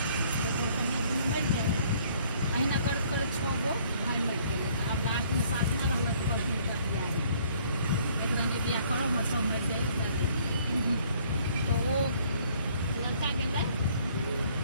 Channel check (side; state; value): both; inverted; correlation -0.61